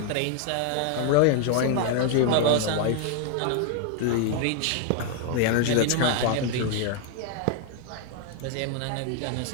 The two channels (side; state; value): both; different; correlation 0.00